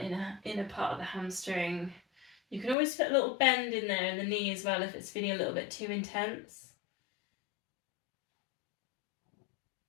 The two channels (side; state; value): right; drops out; at 2.8 s